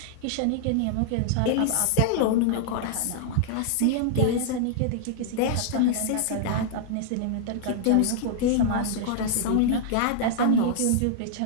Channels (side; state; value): both; different; correlation -0.01